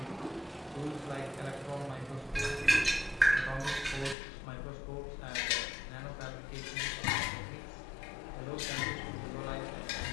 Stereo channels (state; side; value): drops out; right; at 4.2 s